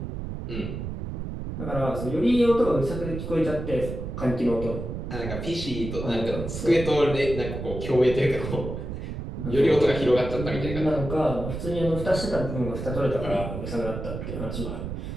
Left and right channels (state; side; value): noise; right; rumble, 6 dB below the sound